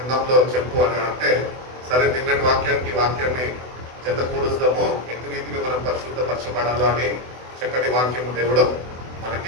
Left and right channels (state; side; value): late; left; 24 ms